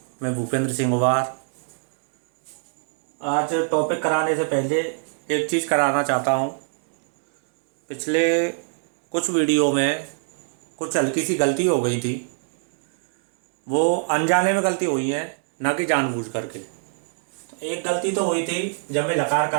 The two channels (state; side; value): silent; left; digital silence